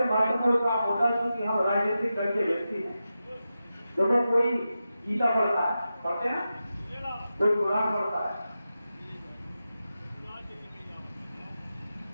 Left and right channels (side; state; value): both; inverted; correlation -0.91